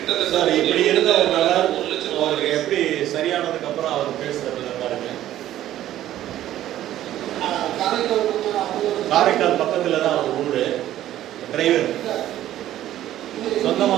சார் இப்படி இருந்த ஒரு நபர் அவருக்கு எப்படி சரியானதுக்கு அப்புறம் அவர் பேசுறது பாருங்க. காரைக்கால் பக்கத்துல தான் அவர் ஊரு. டிரைவர் சொந்தமா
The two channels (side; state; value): left; quieter; 13.0 dB